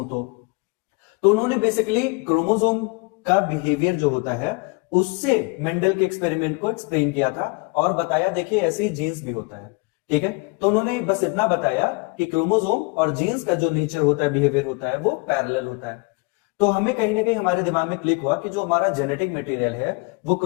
तो उन्होंने बेसिकली क्रोमोसोम का बिहेवियर जो होता है उससे मेंडल के एक्सपेरिमेंट को एक्सप्लेन किया था और बताया देखिए ऐसे ही जीन्स भी होता है। ठीक है, तो उन्होंने बस इतना बताया कि क्रोमोसोम और जीन्स का जो नेचर होता है, बिहेवियर होता है, वो पैरेलल होता है। तो हमें कहीं ना कहीं हमारे दिमाग में क्लिक हुआ कि जो हमारा जेनेटिक मटेरियल है वो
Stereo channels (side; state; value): right; quieter; 29.0 dB